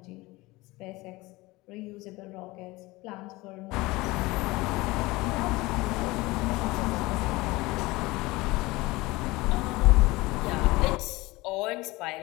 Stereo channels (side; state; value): right; quieter; 21.3 dB